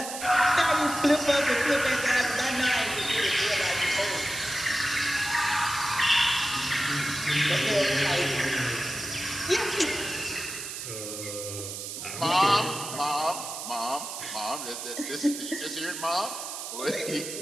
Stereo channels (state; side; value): noise; right; hiss, 7 dB below the sound